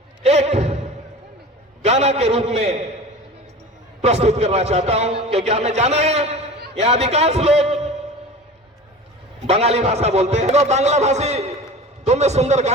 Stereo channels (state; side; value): normal; both; correlation 0.36